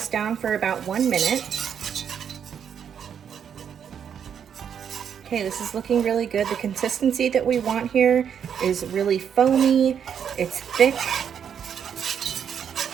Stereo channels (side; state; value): left; quieter; 8.1 dB